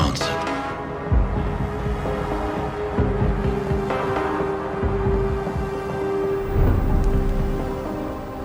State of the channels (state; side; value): identical; both; correlation 1.00